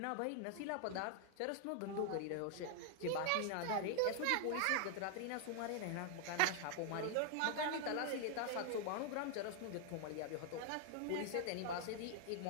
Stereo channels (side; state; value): both; different; correlation 0.00